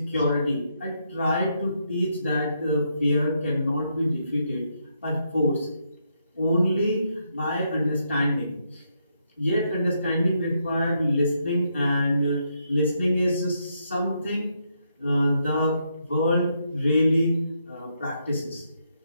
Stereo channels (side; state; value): both; inverted; correlation -0.78